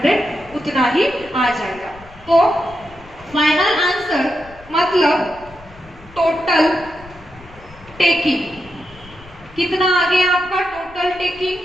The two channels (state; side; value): noise; left; rumble, 22 dB below the sound